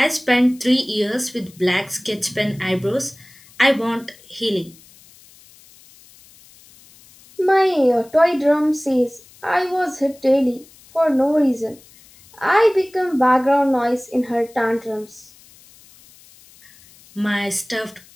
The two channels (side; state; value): left; noise; hiss, 26 dB below the sound